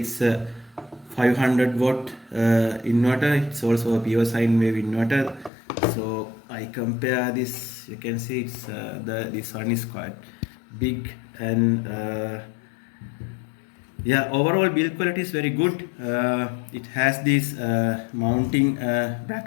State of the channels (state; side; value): drops out; right; at 5.5 s